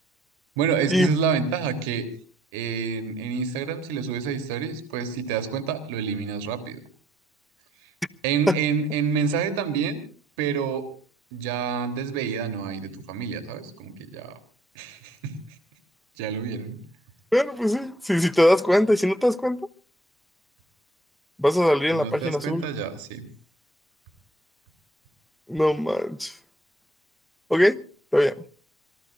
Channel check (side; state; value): both; normal; correlation 0.67